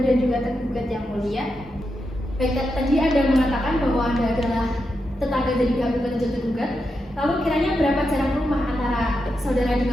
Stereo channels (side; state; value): both; normal; correlation 0.86